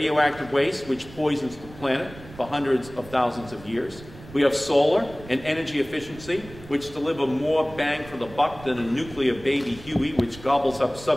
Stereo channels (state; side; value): noise; right; rumble, 18 dB below the sound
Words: waste, which poisons the planet for hundreds of thousands of years. We have solar and energy efficiency, which deliver more bang for the buck than a nuclear baby Huey, which gobbles up